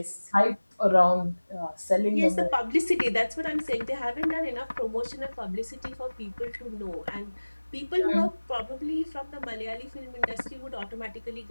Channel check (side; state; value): both; inverted; correlation -1.00